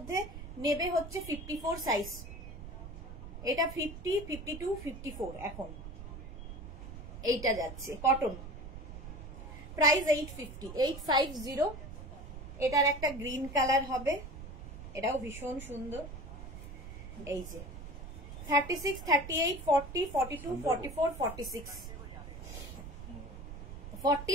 নেবে হচ্ছে 54 সাইজ। এটা 50, 52, 54 এখন এইটা যাচ্ছে কটন। প্রাইস 850, 850। এটার একটা গ্রিন কালার হবে, এটাও ভীষণ সুন্দর। এই যে 36, 38, 40, 42, 44, 46,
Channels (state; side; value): noise; right; rumble, 11 dB below the sound